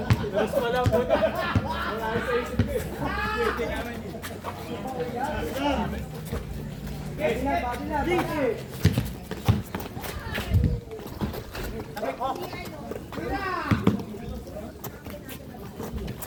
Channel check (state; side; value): identical; both; correlation 1.00